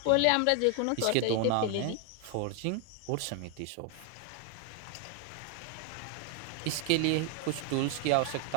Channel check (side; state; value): both; different; correlation 0.00